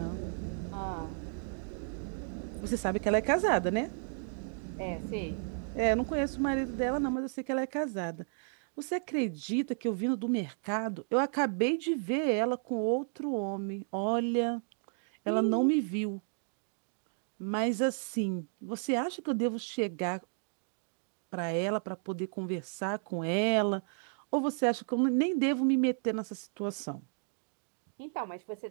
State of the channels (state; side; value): silent; left; digital silence